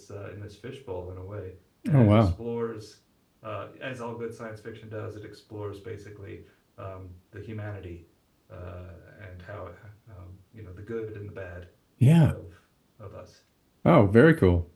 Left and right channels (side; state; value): both; identical; correlation 1.00